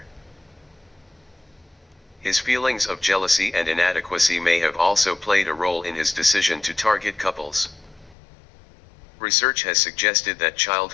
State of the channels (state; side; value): drops out; right; at 8.2 s